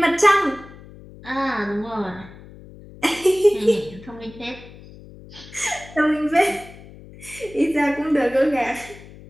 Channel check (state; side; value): noise; left; hum, 19 dB below the sound